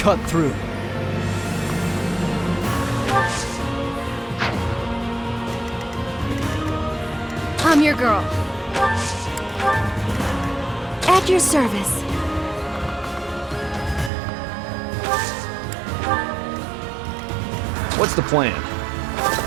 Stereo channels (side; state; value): left; drops out; at 14.1 s